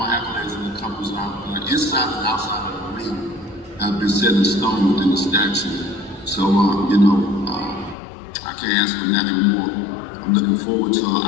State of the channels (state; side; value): drops out; right; at 8.0 s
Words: accolades and accomplishments inside and outside of the ring have been set in stone within the statue. So, you know, I can't ask for nothing more. I'm looking forward to